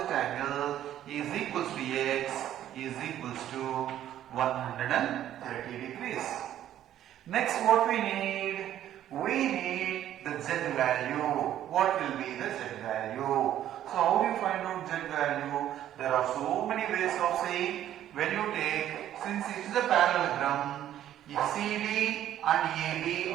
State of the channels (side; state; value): left; quieter; 11.7 dB